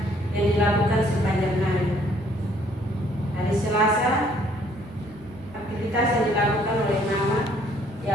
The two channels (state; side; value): normal; both; correlation 0.63